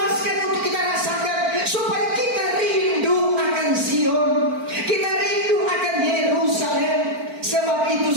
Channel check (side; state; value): left; late; 4.5 ms